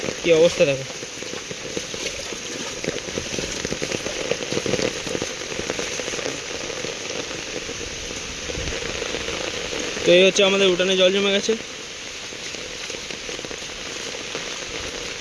কি অবস্থা দেখো। তো এই হচ্ছে আমাদের উঠানে জল জমে গেছে।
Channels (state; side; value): identical; both; correlation 1.00